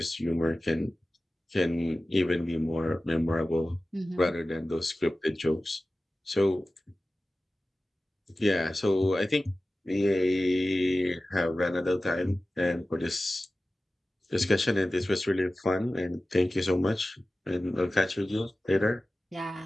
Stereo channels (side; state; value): both; normal; correlation 0.96